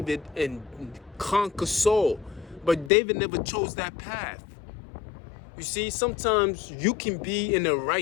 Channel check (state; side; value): drops out; right; at 2.9 s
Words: and conquer Saul. But David never chose that path. You see, sometimes you can be in the